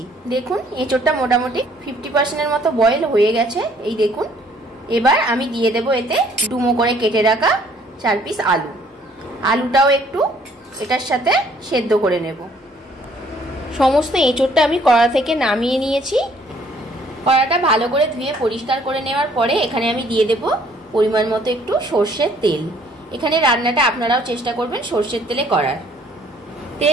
দেখুন এঁচোড়টা মোটামুটি 50%-এর মতো বয়েল হয়ে গেছে। এই দেখুন, এবার আমি দিয়ে দেব এতে ডুমো করে কেটে রাখা 4 পিস আলু। আলুটাও একটু এটার সাথে সেদ্ধ করে নেব। সমস্ত এঁচোড়টা আমি কড়া থেকে নামিয়ে নিয়েছি। কড়াটা ভালো করে ধুয়ে পরিষ্কার করে নেওয়ার পরে এখানে আমি দিয়ে দেব পরিমাণ মতো একটু সর্ষের তেল। এখানে রান্নাটা আপনারাও চেষ্টা করবেন সর্ষের তেলে করার।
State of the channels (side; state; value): both; normal; correlation 0.61